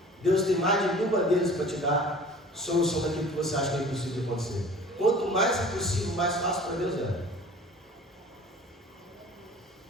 Deus tem mais de 1000 maneiras para te dar solução daquilo que você acha que é impossível de acontecer. Quanto mais impossível, mais fácil para Deus é.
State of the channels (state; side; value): normal; both; correlation 0.45